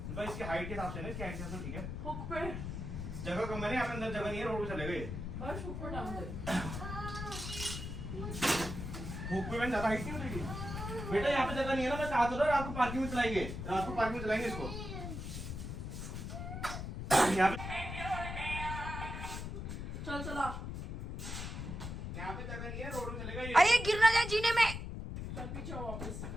भाई इसकी हाइट के हिसाब से ना, इसकी हाइट के हिसाब से ठीक है। हुक पे जगह कम है ना, यहाँ पे अंदर जगह नहीं है, रोड पे चले गए। भावेश हुक पे टांग दे। हुक पे मैंने ज्यादा हाइट नहीं उतरेगी बेटा, यहाँ पे जगह नहीं है ना, मैं कहा तो रात को पार्किंग में चलाएंगे, रात को पार्किंग में चलाएंगे इसको यहाँ पे। चल चला, यहाँ पे जगह नहीं है, रोड में चलेगा ये। अरे गिर ना जाए जीने में। चल पीछे आओ वापस।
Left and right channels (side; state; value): left; noise; rumble, 6 dB below the sound